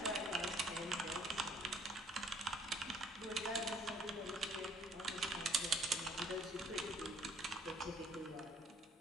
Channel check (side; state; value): both; normal; correlation 0.60